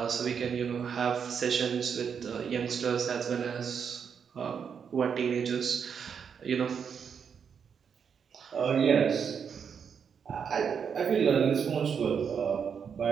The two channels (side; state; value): left; quieter; 6.9 dB